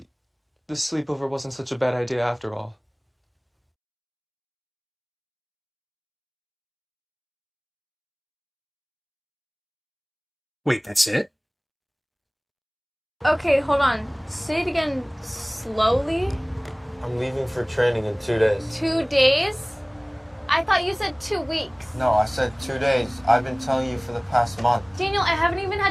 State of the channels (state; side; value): identical; both; correlation 1.00